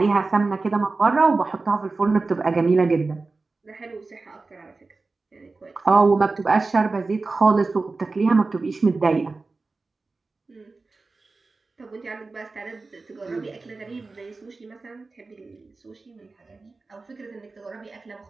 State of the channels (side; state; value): left; quieter; 3.7 dB